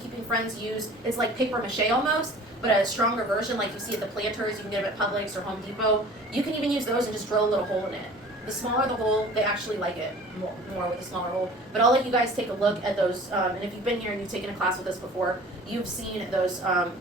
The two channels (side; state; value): both; normal; correlation 0.45